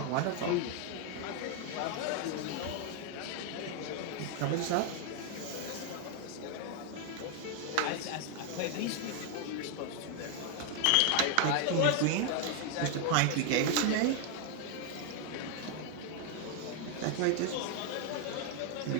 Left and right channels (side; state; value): both; different; correlation 0.01